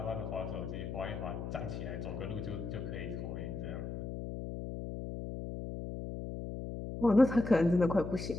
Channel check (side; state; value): left; noise; hum, 6 dB below the sound